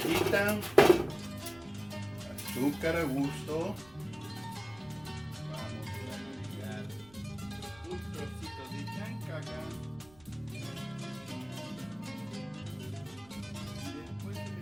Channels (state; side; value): noise; right; rumble, 24 dB below the sound